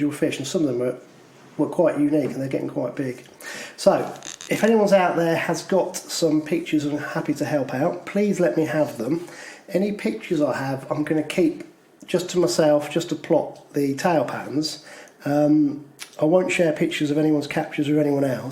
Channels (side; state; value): both; identical; correlation 1.00